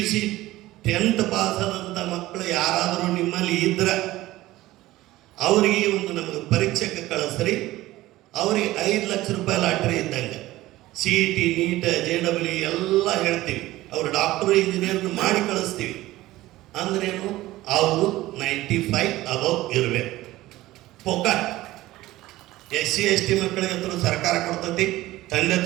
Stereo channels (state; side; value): quieter; left; 17.0 dB